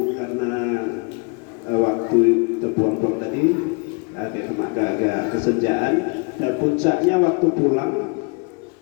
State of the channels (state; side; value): quieter; right; 33.7 dB